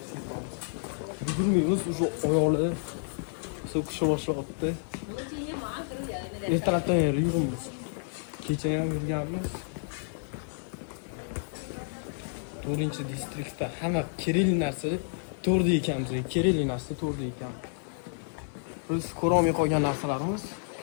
Yugurmaymiz, уже oyoqlar so'kisha boshlayapti. Ertalabdan beri yuribmiz. Kecha ham yurganmiz. 4-distriktda hamma kerakli narsa 4da ekanmiz. Kerakli narsa 4da ekan. Biz ko'rolmay qolgan narsalarimiz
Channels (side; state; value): right; silent; digital silence